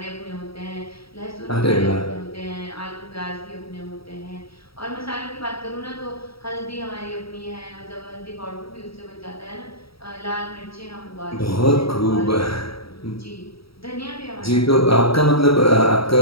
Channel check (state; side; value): late; right; 0.75 ms